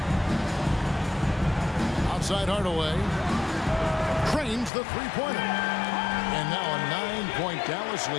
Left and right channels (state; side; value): drops out; right; at 4.7 s